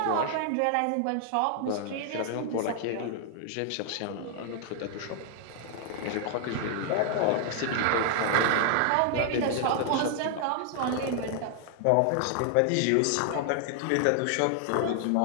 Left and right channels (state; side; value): different; both; correlation 0.00